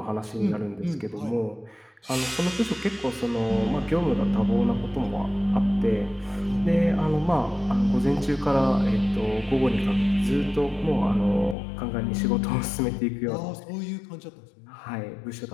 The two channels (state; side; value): drops out; right; at 11.6 s